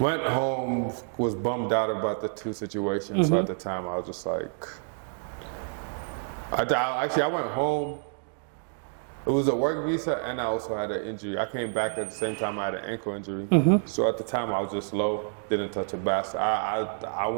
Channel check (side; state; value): left; silent; 58 dB below the other